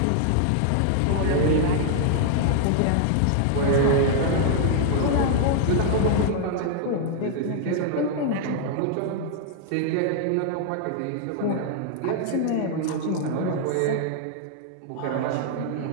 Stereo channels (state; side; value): different; both; correlation -0.01